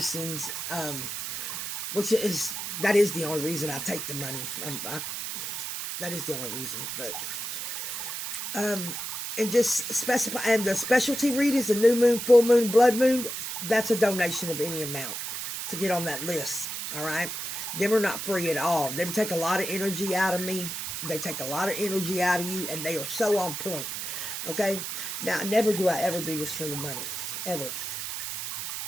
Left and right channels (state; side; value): noise; right; hiss, 5 dB below the sound